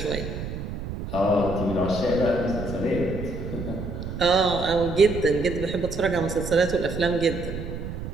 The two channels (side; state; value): right; noise; rumble, 7 dB below the sound